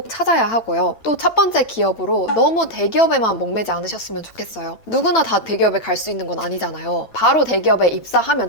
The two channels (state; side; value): late; right; 9.0 ms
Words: 찾아야 하고요. 또 첫 번째 기업으로 너무 대기업에만 목매지 않으셨으면 좋겠어요. 누구나 다 대기업에 갈 수 있는 건 아니잖아요. 바로 대기업에 입사하면